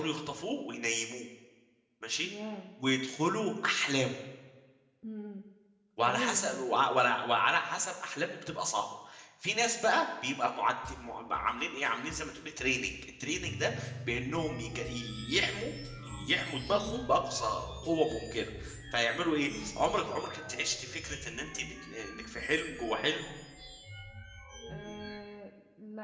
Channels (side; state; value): both; identical; correlation 1.00